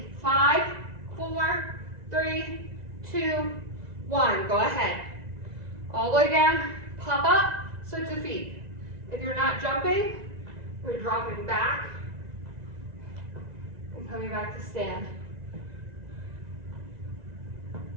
5, 4, 3, 2, 1. Go ahead. All the way down, pop up, switch the feet. If you're not jumping, we're dropping back and coming back to stand.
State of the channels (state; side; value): late; left; 2.0 ms